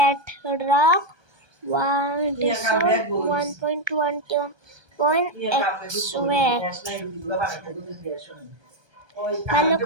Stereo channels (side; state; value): left; late; 1.3 ms